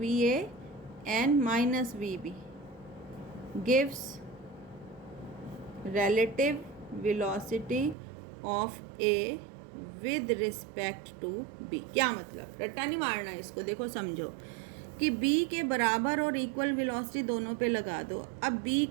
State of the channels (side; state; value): left; drops out; at 8.0 s